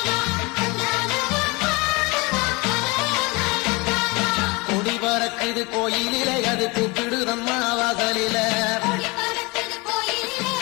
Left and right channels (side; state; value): right; quieter; 26.0 dB